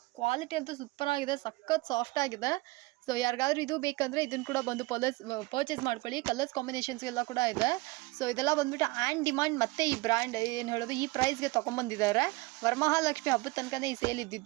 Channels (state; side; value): quieter; left; 22.1 dB